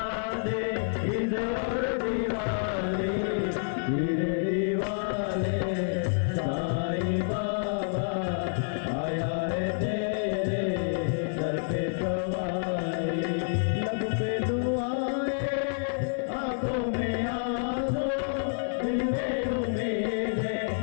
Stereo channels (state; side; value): silent; right; 59 dB below the other